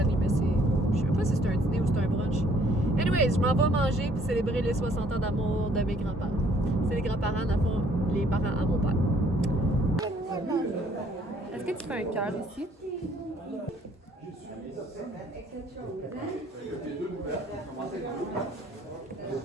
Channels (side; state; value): both; normal; correlation 0.62